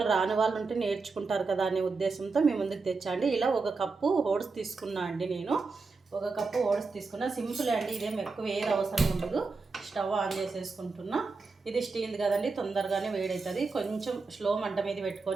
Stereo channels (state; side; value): quieter; left; 4.2 dB